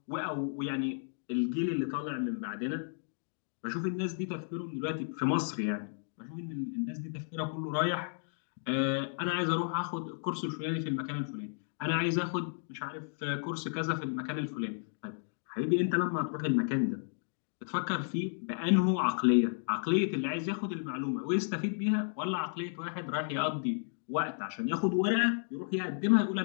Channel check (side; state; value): right; silent; digital silence